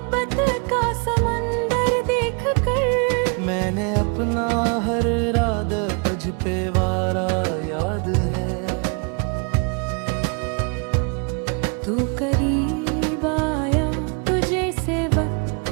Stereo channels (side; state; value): left; quieter; 35.2 dB